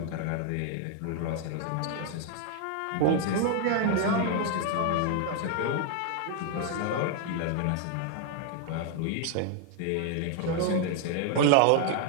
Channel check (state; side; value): different; both; correlation 0.00